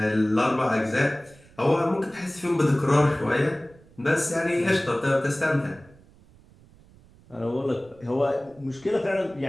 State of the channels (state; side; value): noise; right; rumble, 26 dB below the sound